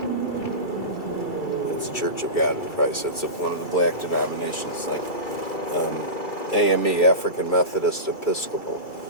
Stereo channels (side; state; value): right; late; 2.3 ms